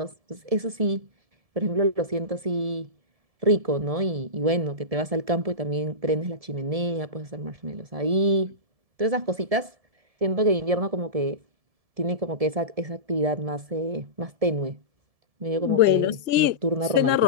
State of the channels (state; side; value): late; left; 1.7 ms